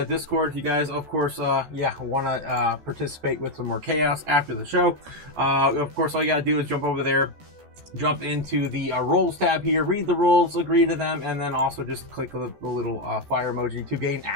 Discord if you guys, of course, yeah, want to participate with some more chaos after the show. Of course, all you got to do is jump over there, jump into the roles tab here, read the rules, agree to them, and then also just click the little fire emoji to gain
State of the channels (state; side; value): late; left; 14 ms